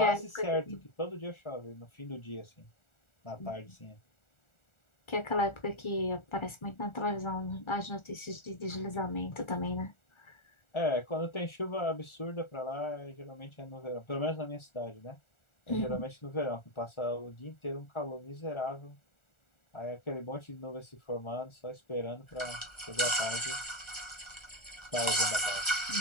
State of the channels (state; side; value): late; right; 1.4 ms